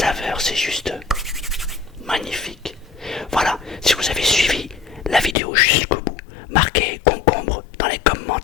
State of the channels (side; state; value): right; drops out; at 5.4 s